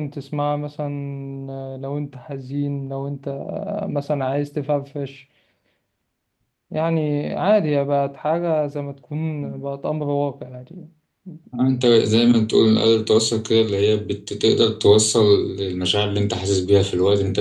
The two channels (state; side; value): identical; both; correlation 1.00